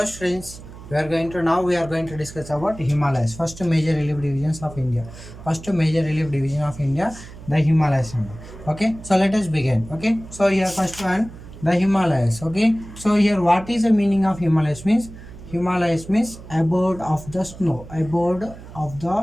students, we are going to discuss about Himalayas. First major relief divisions of India. First major relief division of India, the Himalayas. Okay, so let us begin. Okay, so here first one, the Himalayas. Okay, so here what is the meaning of Himalayas means? Himalayas means abode of the snow. Abode of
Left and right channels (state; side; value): noise; right; hum, 16 dB below the sound